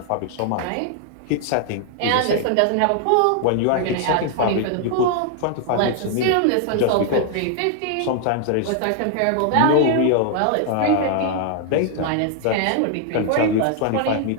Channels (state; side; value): different; both; correlation 0.00